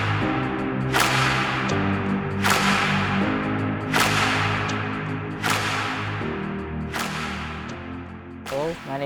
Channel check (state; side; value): identical; both; correlation 1.00